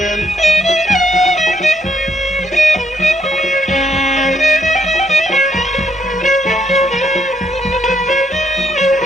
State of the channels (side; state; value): both; normal; correlation 0.74